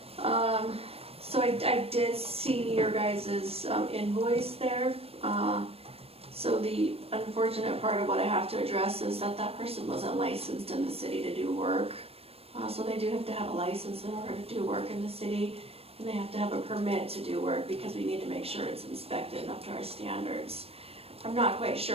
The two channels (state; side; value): late; left; 0.28 ms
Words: So I did see your guys' invoice there. So the unfortunate part of what I have to address is that person wasn't licensed in the city to do work. So they do have to have a license in order to do work in the city, and they have to have a permit to do work because we need to make sure it's inspected up to our standards. I'm not quite